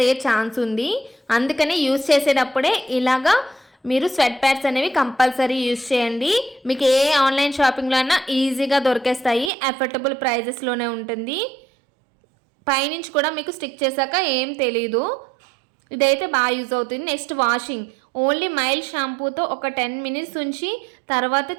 అయ్యే ఛాన్స్ ఉంది. అందుకని యూజ్ చేసేటప్పుడే ఇలాగా మీరు స్వెట్ ప్యాడ్స్ అనేవి కంపల్సరీ యూజ్ చేయండి. మీకు ఏ ఆన్లైన్ షాపింగ్లో అయినా ఈజీగా దొరికేస్తాయి, అఫోర్డబుల్ ప్రైజెస్లోనే ఉంటుంది. పైనుంచి కూడా మీకు స్టిక్ చేశాక ఏం తెలీదు. ఇదైతే బాగా యూజ్ అవుతుంది. నెక్స్ట్ వాషింగ్, ఓన్లీ మైల్డ్ షాంపూతో ఒక 10 మినిట్స్ ఉంచి తర్వాత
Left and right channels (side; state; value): left; drops out; at 9.5 s